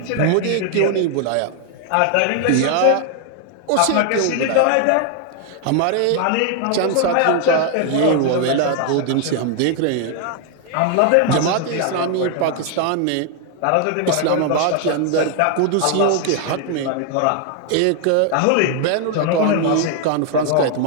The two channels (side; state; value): both; different; correlation 0.00